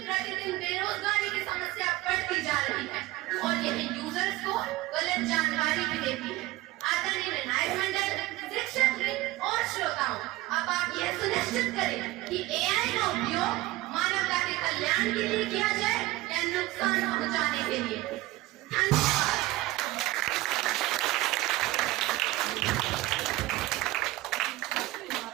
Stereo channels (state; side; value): quieter; left; 18.5 dB